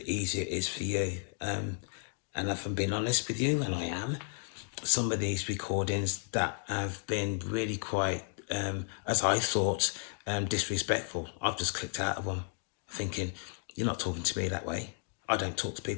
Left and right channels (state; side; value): silent; right; 56 dB below the other